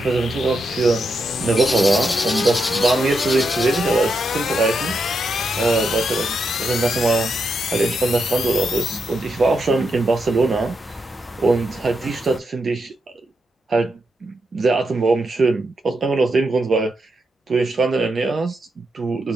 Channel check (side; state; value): both; normal; correlation 0.84